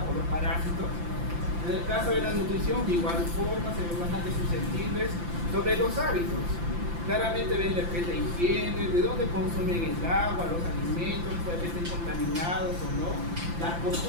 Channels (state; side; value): late; left; 5.9 ms